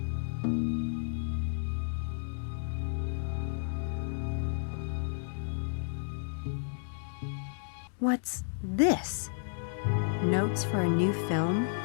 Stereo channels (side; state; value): right; silent; digital silence